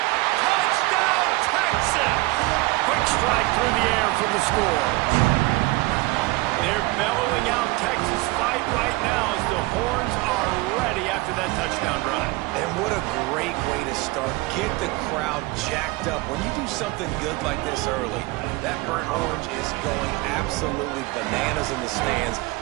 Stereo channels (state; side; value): quieter; left; 22.2 dB